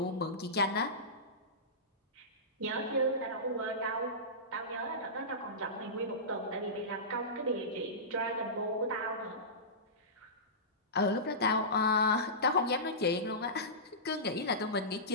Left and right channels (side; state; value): both; normal; correlation -0.19